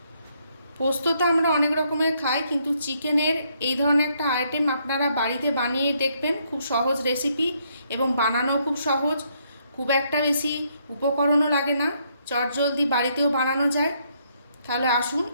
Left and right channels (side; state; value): both; inverted; correlation -0.72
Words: পোস্ত তো আমরা অনেক রকমের খাই, কিন্তু চিকেনের এই ধরনের একটা আইটেম আপনারা বাড়িতে বানিয়ে দেখবেন। খুব সহজ রেসিপি এবং বানানো খুব সহজ, খুব একটা বেশি উপকরণও লাগে না, চটজলদি বাড়িতেও বানানো যায়। তাহলে আসুন